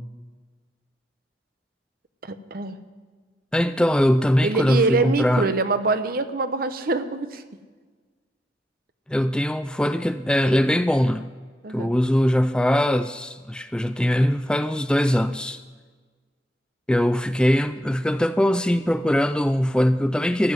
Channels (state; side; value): normal; both; correlation 0.83